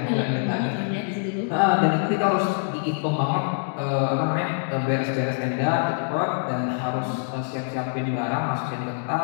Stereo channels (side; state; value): right; silent; digital silence